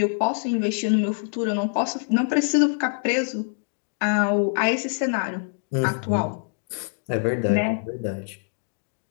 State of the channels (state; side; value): silent; right; digital silence